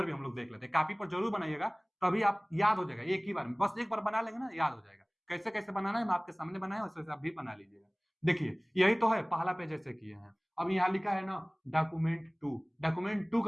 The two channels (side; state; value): both; identical; correlation 1.00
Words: भी हम लोग देख लेते हैं, कॉपी पर जरूर बनाइएगा, तभी आप याद हो जाएगा एक ही बार में, बस एक बार बना लेंगे ना याद हो जाएगा। कैसे कैसे बनाना है मैं आपके सामने बनाया, वैसे वैसे आप भी बना लीजिएगा। देखिए यही तो है, पहला पेज ऐसे किए हैं। अब यहाँ लिखा है ना डॉक्यूमेंट 2, डॉक्यूमेंट 2